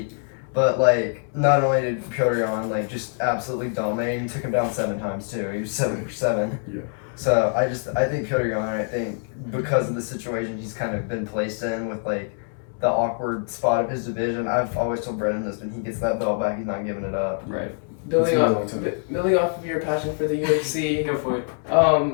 but like, not only did Piotr Yan like just absolutely dominate, he took him down 7 times too. He was 7 for 7. Yeah. So I think Piotr Yan, I think because of the situation he's kind of been placed in with like the awkward spot of his division, I've always told Brennan this: when he gets that belt back, he's not giving it up. Right. Building off of your passion for the UFC, Go for it.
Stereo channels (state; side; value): silent; right; 56 dB below the other